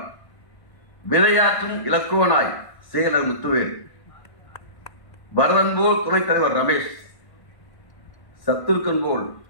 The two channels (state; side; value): late; right; 1.5 ms